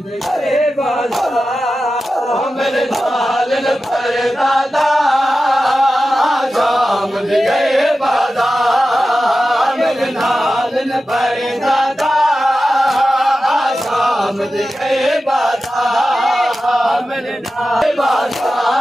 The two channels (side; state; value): both; normal; correlation 0.93